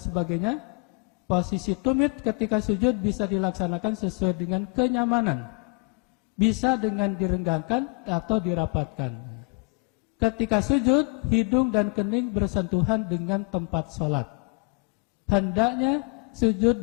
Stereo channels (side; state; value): right; quieter; 36.2 dB